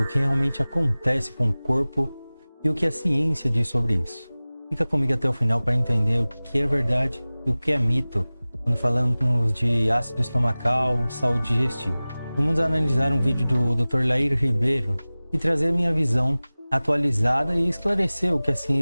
o que realmente acontece com o corpo e o que a ciência diz sobre isso. Fica comigo até o final para entender o que é verdade e o que é mito quando falamos de ácido estomacal, saúde digestiva. Vamos analisar um vídeo do Dr. Lair Ribeiro e trazer minha visão atualizada e esclarecer o que a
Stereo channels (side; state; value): both; inverted; correlation -0.99